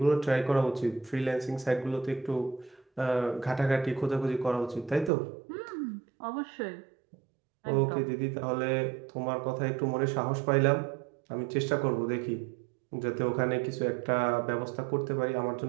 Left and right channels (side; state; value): left; drops out; at 5.1 s